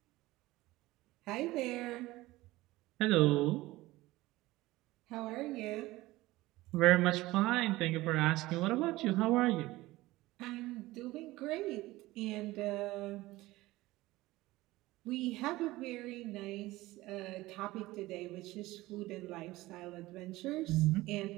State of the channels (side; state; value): left; quieter; 18.6 dB